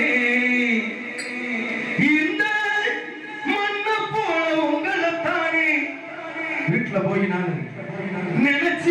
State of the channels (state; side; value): identical; both; correlation 1.00